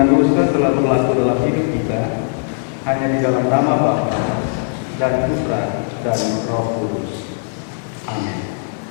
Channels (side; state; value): right; silent; digital silence